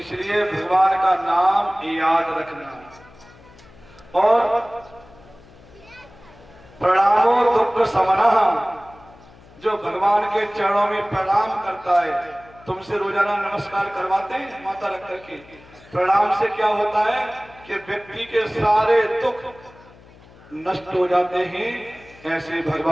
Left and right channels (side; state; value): left; noise; hum, 24 dB below the sound